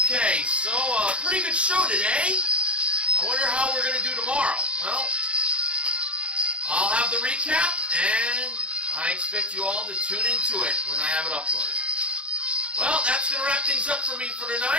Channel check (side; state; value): left; late; 0.060 ms